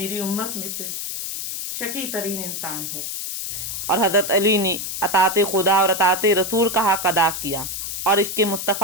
उम्मत में से शकी तरीन इंसान होगा। और हजरत अली ने अताते खुदा और अताते रसूल का हक अदा किया, और इसके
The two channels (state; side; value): noise; left; hiss, 5 dB below the sound